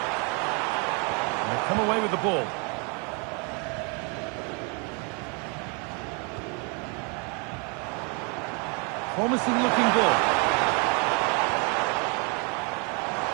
Come away with the ball. Promising looking ball.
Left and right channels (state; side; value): quieter; left; 34.4 dB